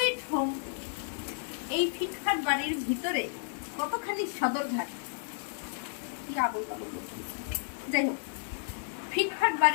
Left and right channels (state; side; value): silent; right; digital silence